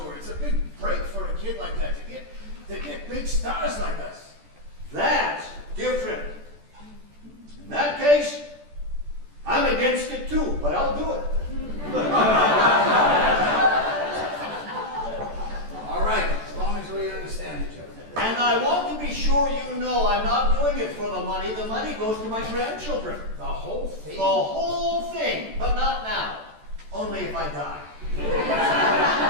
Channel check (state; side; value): late; left; 14 ms